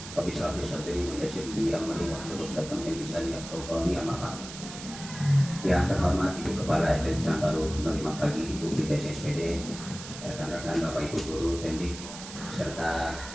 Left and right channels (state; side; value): noise; right; hiss, 12 dB below the sound